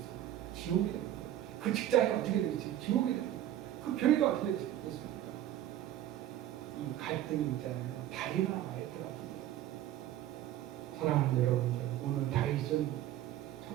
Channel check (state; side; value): quieter; left; 12.5 dB